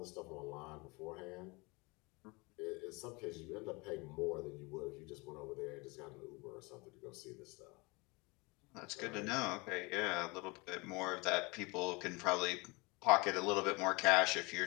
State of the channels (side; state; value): right; quieter; 26.7 dB